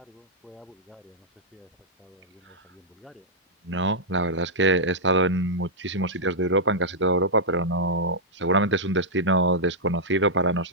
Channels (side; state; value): both; normal; correlation -0.08